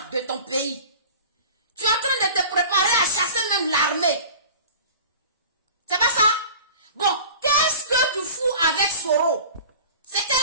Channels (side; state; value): both; inverted; correlation -0.40